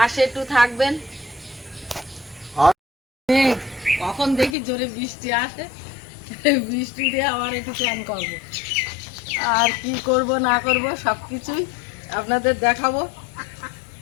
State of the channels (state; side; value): drops out; right; at 4.5 s